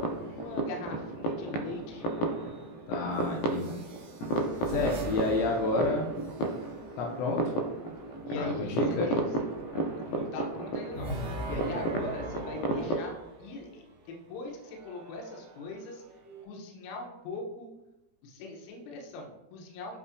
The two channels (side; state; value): right; late; 17 ms